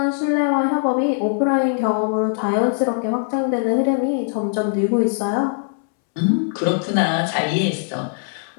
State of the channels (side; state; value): right; silent; 65 dB below the other